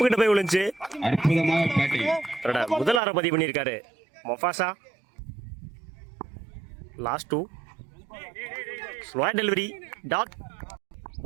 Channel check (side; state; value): left; drops out; at 3.0 s